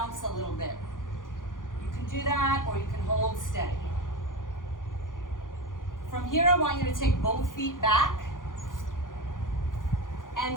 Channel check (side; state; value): right; late; 0.89 ms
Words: a little bit. You can do that, or you can hold steady. From here, I want you to take both feet back